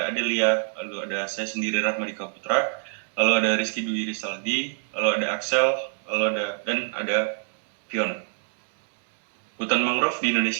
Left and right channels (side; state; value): left; silent; 61 dB below the other